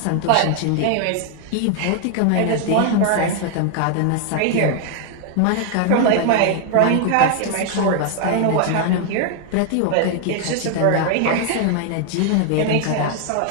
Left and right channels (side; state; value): both; different; correlation 0.00